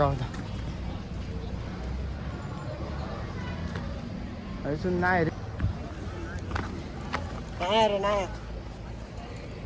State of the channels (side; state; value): both; identical; correlation 1.00